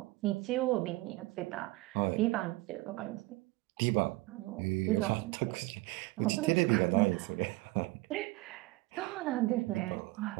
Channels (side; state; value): left; quieter; 21.1 dB